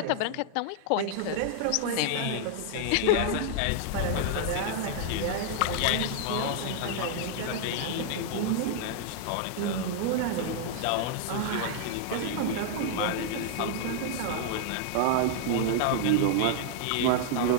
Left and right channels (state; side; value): different; both; correlation -0.01